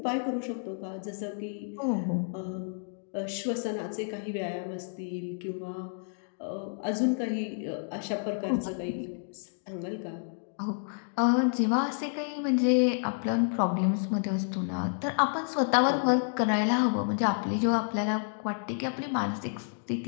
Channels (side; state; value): right; silent; digital silence